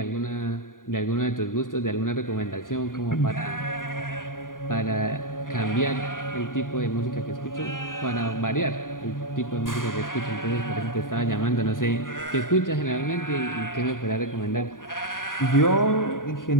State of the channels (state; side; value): late; right; 0.89 ms